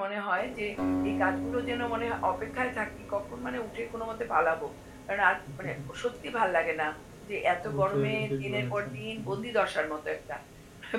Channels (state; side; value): identical; both; correlation 1.00